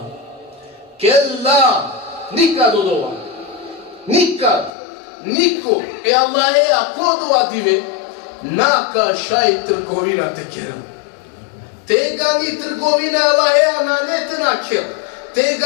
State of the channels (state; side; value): drops out; right; at 4.7 s